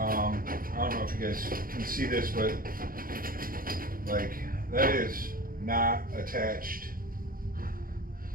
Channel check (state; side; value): late; left; 0.41 ms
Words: don't know if you guys can see this, but like that is not attached.